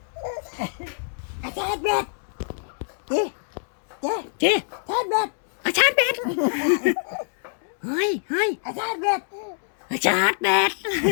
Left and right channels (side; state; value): right; silent; digital silence